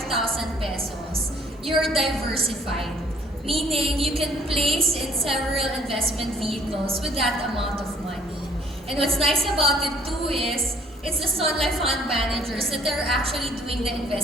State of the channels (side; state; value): both; normal; correlation 0.59